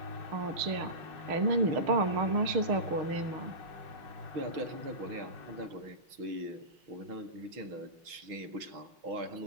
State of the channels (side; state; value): left; late; 6.3 ms